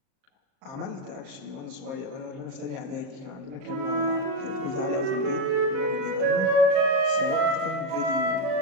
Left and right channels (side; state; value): left; late; 38 ms